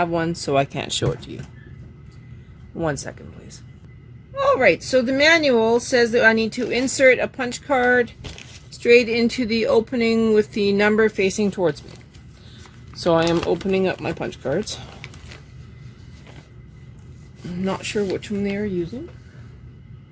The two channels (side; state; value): both; identical; correlation 1.00